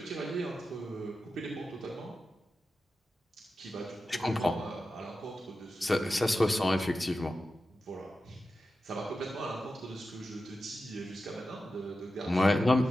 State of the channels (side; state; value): both; normal; correlation 0.92